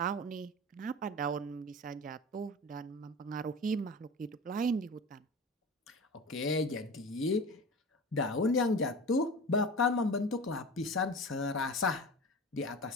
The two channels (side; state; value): both; normal; correlation 0.33